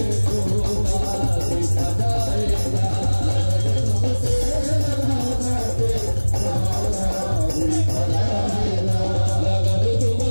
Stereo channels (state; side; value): inverted; both; correlation -1.00